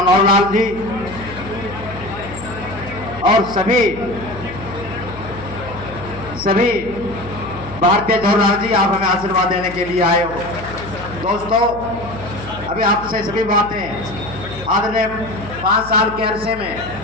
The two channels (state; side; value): noise; left; hum, 14 dB below the sound